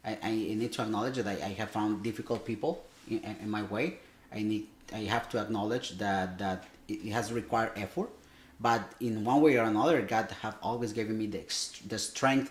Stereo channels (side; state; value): both; identical; correlation 1.00